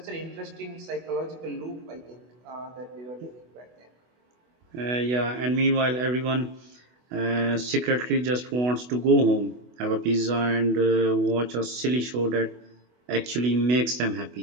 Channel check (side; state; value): left; late; 24 ms